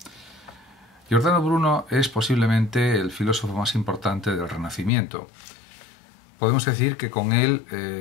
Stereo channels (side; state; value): right; drops out; at 4.9 s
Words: Giordano Bruno es posiblemente el filósofo más importante del Renacimiento. Podemos decir que con